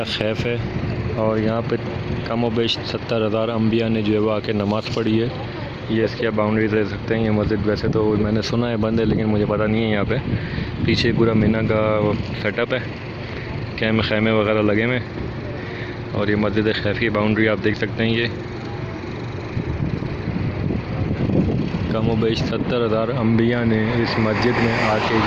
खैफ है, और यहाँ पे कम व बेश 70,000 अम्बिया ने जो है वो आके नमाज़ पढ़ी है। ये इसकी आप बाउंड्री दे सकते हैं। ये मस्जिद वैसे तो मैंने सुना है बंद है, लेकिन मुझे पता नहीं है। यहाँ पे पीछे पूरा मीना का सेटअप है, खैमे वगैरह लगे हुए, और ये मस्जिद खैफ की बाउंड्री आप देख सकते हैं। ये कम व बेश 70,000 अम्बिया ने इस मस्जिद में आके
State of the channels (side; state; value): both; identical; correlation 1.00